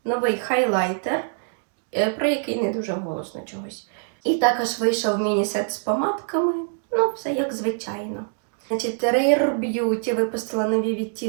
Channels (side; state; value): left; silent; 62 dB below the other